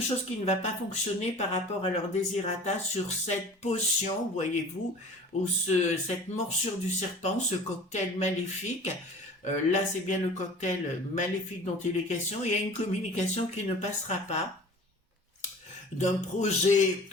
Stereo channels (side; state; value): both; normal; correlation 0.42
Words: qui ne va pas fonctionner par rapport à leur désirata sur cette potion, voyez-vous, ou cette morsure du serpent, ce cocktail maléfique. Là, c'est bien le cocktail maléfique dont il est question. Il y a une communication qui ne passera pas d'un projet